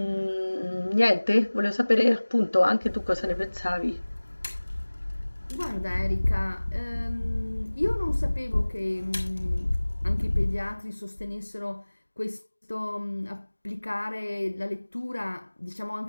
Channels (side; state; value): both; inverted; correlation -1.00